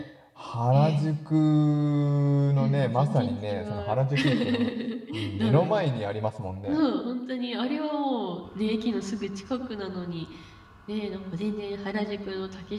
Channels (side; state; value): both; identical; correlation 1.00